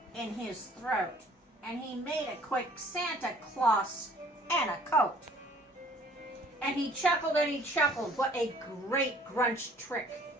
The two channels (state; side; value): normal; both; correlation 0.55